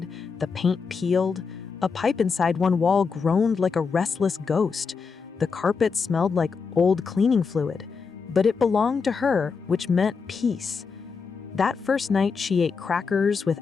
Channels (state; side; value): quieter; right; 5.3 dB